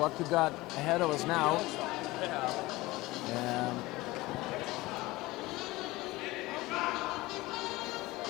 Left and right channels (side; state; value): right; quieter; 19.9 dB